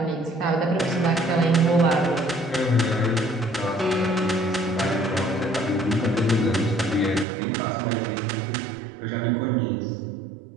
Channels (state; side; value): drops out; left; at 7.2 s